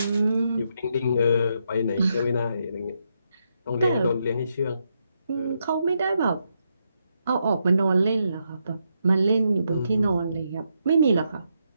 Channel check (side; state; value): both; inverted; correlation -0.80